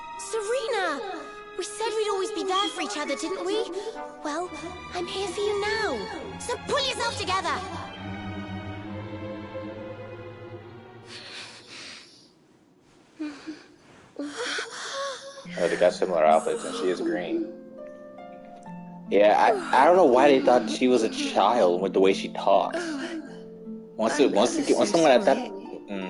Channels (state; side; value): identical; both; correlation 1.00